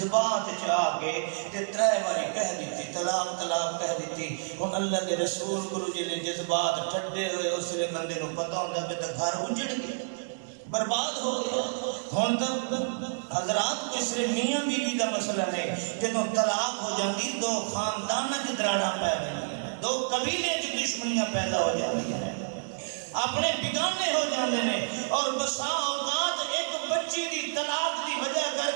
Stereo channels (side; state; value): left; silent; digital silence